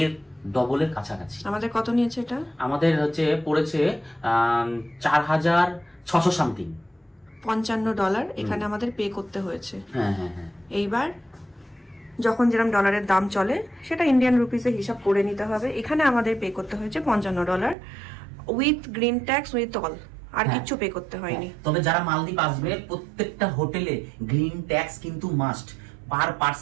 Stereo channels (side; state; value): left; drops out; at 17.8 s